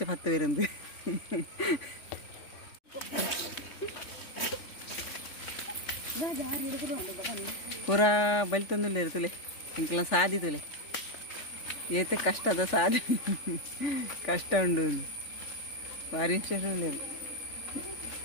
ಪತ್ತವೇರಂದು ಪೂರ ಬಲಿ ತಂದುಲ್ಲೇರು ತುಲೆ ಎಂಕ್ಲ ಸಾದಿ ತುಲೆ ಏತು ಕಷ್ಟದ ಸಾಧಿ ಕಷ್ಟ ಉಂಡು ಭಾರಿ ಇಂಟ್ರೆಸ್ಟ್ ಉಳ್ಳೇರು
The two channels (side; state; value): right; late; 3.4 ms